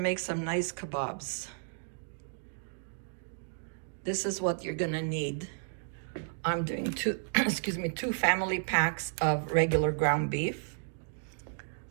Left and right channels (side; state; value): left; silent; digital silence